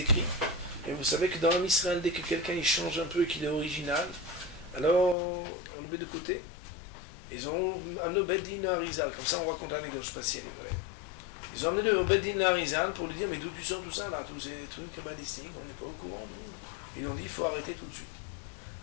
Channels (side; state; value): right; drops out; at 5.2 s